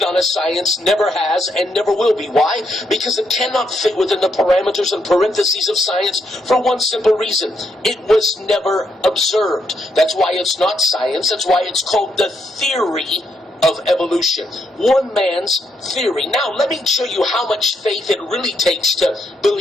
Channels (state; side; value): normal; both; correlation 0.77